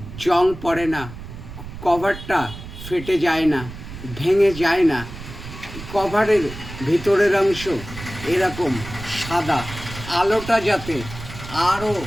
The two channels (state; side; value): noise; right; rumble, 12 dB below the sound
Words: জং পড়ে না, কভারটা ফেটে যায় না, ভেঙে যায় না। কভারের ভিতরের অংশ এরকম সাদা, আলোটা যাতে আরও